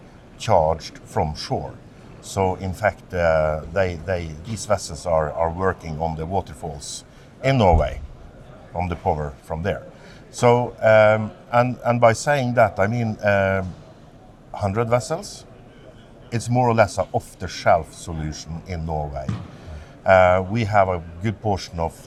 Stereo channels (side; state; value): both; identical; correlation 1.00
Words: charged from shore. So in fact, these vessels are working on the waterfalls in Norway, from the power from there. So and by saying that, I mean 100 vessels. It's more or less an off-the-shelf solution in Norway. We have a good portion of